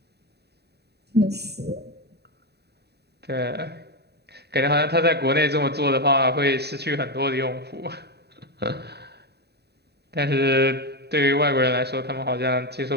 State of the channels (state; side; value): late; left; 0.48 ms